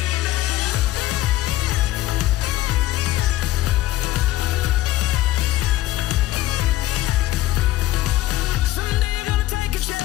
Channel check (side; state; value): right; quieter; 15.3 dB